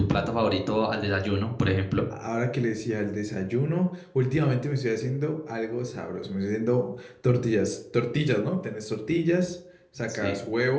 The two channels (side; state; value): both; identical; correlation 1.00